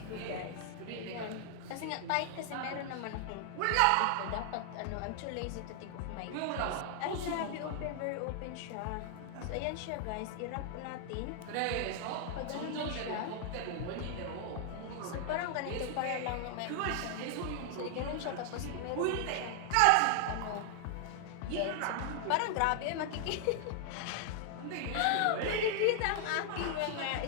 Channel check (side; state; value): both; different; correlation 0.00